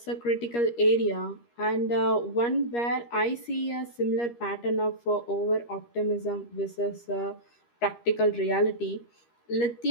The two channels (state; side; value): late; right; 13 ms